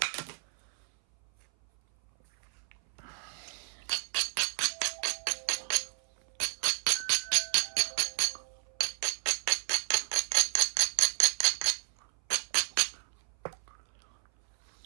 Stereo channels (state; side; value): silent; left; 57 dB below the other